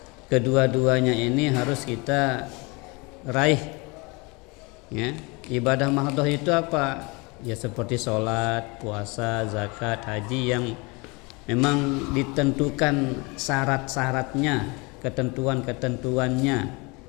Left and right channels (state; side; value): quieter; right; 27.7 dB